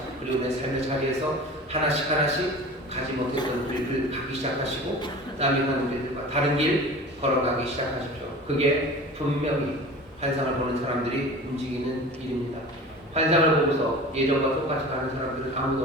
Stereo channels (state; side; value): normal; both; correlation 0.38